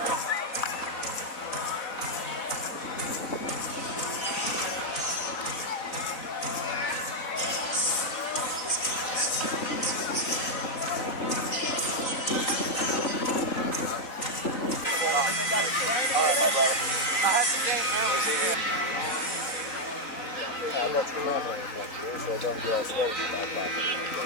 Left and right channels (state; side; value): late; right; 3.9 ms